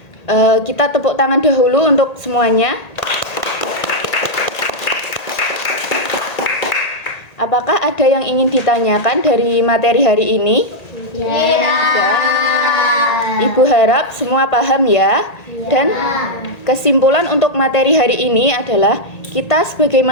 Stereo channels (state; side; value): late; right; 1.8 ms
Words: Kita tepuk tangan dahulu untuk semuanya. Apakah ada yang ingin ditanyakan dari materi hari ini? Ya. Ibu harap semua paham ya. Dan kesimpulan untuk materi hari ini adalah kita sebagai